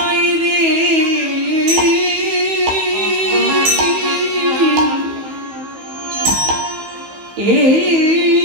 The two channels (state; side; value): late; left; 15 ms